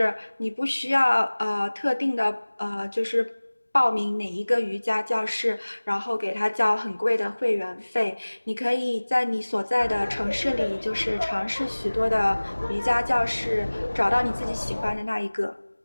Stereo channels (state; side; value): inverted; both; correlation -1.00